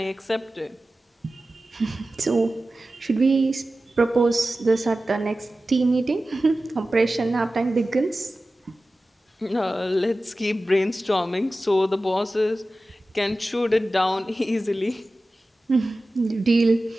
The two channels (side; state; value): both; normal; correlation 0.95